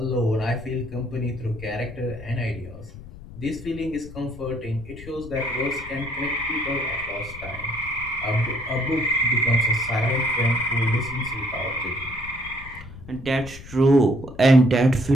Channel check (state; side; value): noise; left; rumble, 15 dB below the sound